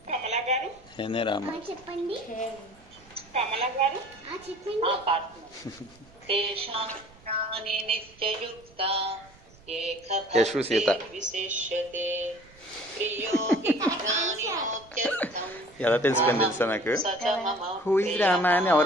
కమలా గారు చెప్పండి. కమలా గారు చెప్పండి. తేషాం జ్ఞాని నిత్యయుక్త ఏక విశిష్యతే ప్రియో హి జ్ఞానినోత్యర్థం ఎలా తెలుసుకొని తెలుసా నాకు? సచ మమ హూ ఇస్ రామా అని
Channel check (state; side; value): noise; right; rumble, 26 dB below the sound